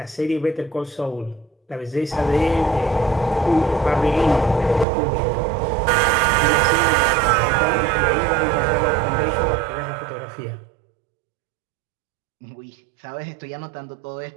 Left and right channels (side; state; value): left; drops out; at 4.9 s